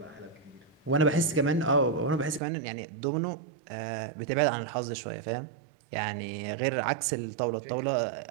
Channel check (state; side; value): drops out; left; at 2.4 s